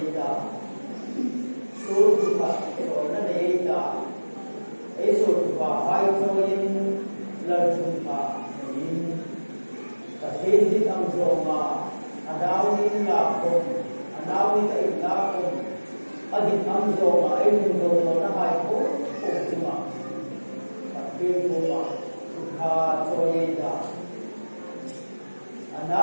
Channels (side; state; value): both; inverted; correlation -1.00